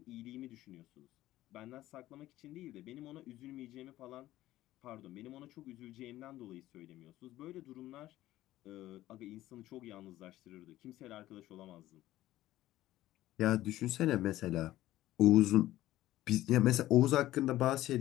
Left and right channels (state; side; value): quieter; right; 15.2 dB